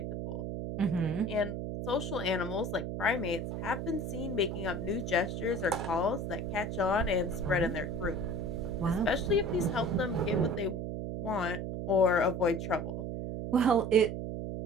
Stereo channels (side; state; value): right; noise; hum, 4 dB below the sound